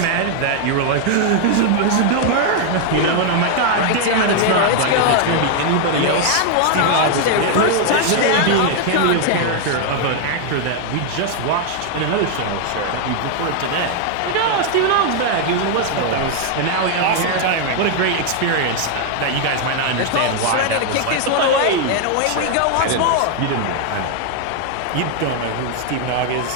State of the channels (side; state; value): both; different; correlation 0.00